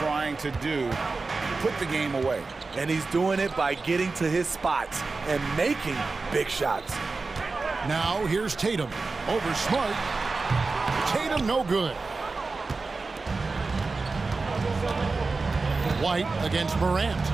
to do. Put the game away. And he's doing it by getting to his spots and making big shots. Now here's Tatum. Over Smart. Tatum no good. White against Morant.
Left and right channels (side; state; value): left; quieter; 3.9 dB